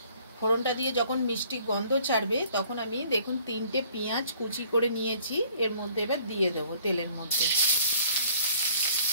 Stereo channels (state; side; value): inverted; both; correlation -0.58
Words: ফোড়নটা দিয়ে যখন মিষ্টি গন্ধ ছাড়বে তখন আমি দেখুন 3টে পেঁয়াজ কুচি করে নিয়েছি, এর মধ্যে এবার দিয়ে দেবো তেলের মধ্যে।